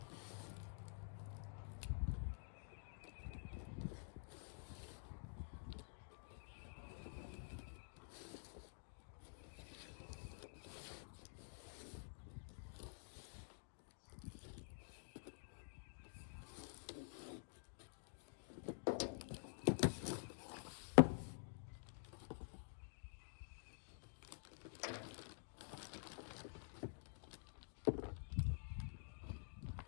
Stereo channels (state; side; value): silent; right; digital silence